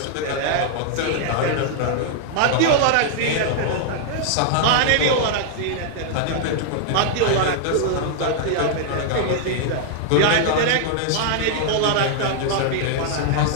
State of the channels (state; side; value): different; both; correlation -0.01